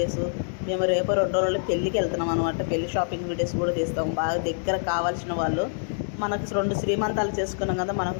మేము రేపు 2 రోజులు పెళ్ళికి వెళ్తున్నాం అనమాట. పెళ్లి షాపింగ్ వీడియోస్ కూడా తీస్తాం. బాగా దగ్గర కావాల్సిన వాళ్ళు, మనకు 2 శ్రీమంతాలు చేసుకున్నాం కదా, మనకు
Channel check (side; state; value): right; silent; digital silence